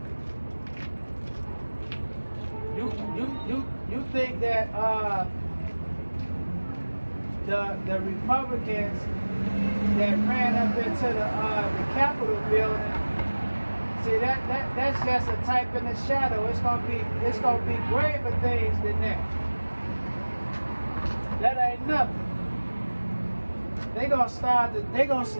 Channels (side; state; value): both; inverted; correlation -1.00